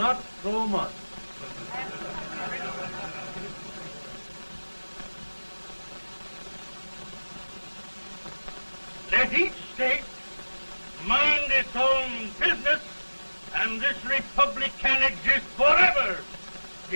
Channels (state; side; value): inverted; both; correlation -1.00